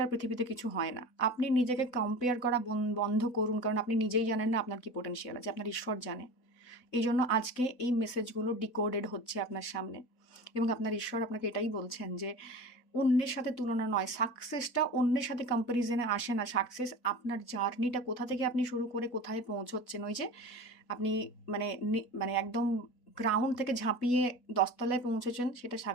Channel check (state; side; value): late; right; 4.0 ms